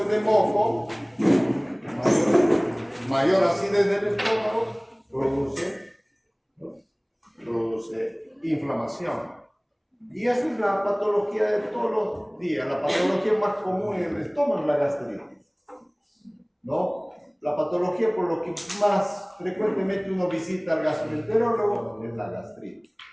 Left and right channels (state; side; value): identical; both; correlation 1.00